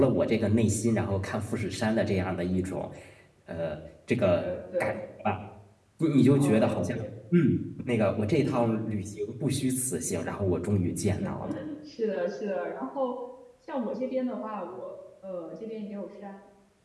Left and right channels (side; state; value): both; identical; correlation 1.00